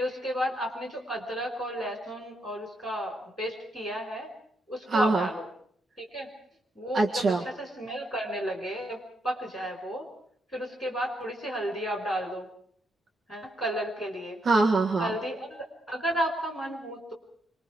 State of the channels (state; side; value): normal; both; correlation 0.79